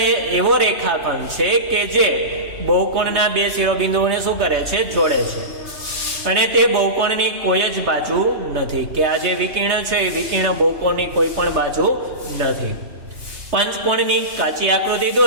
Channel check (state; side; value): late; left; 3.3 ms